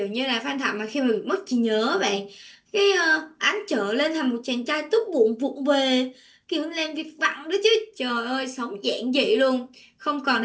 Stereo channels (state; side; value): identical; both; correlation 1.00